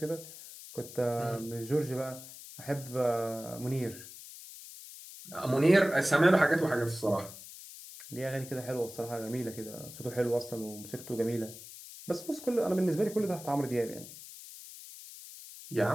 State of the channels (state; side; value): noise; left; hiss, 15 dB below the sound